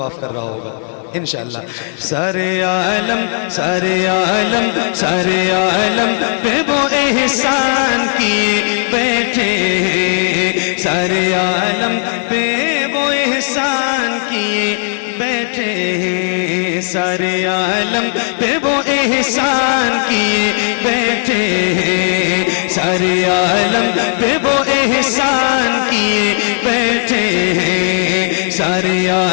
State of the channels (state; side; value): silent; right; digital silence